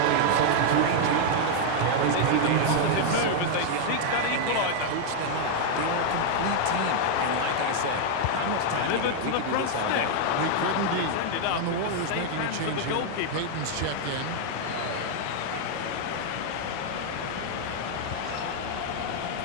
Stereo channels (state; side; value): different; both; correlation 0.00